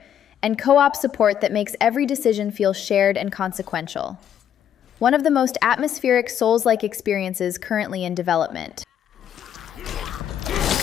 and co-op support that makes every decision feel shared and consequential. One of the most atmospheric Souls-like experiences currently in development.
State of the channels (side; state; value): right; quieter; 9.7 dB